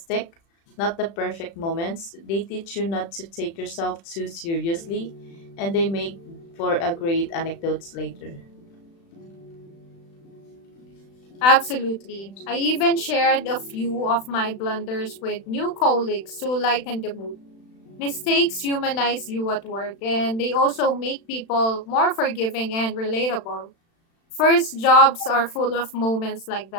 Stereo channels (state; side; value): late; right; 36 ms